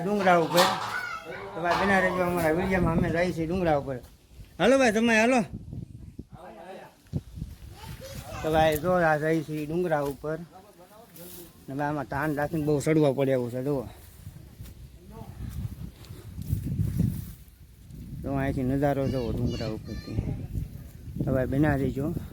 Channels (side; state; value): both; identical; correlation 1.00